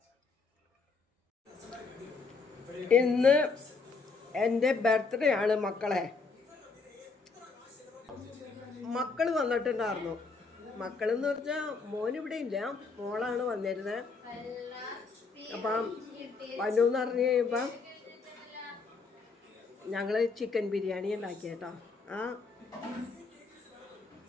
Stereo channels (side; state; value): right; quieter; 4.4 dB